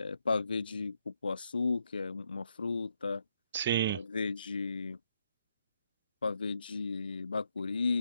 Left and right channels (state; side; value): inverted; both; correlation -0.79